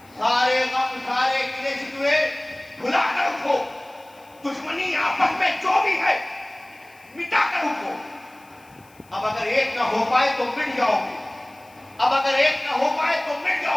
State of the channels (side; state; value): left; noise; hiss, 29 dB below the sound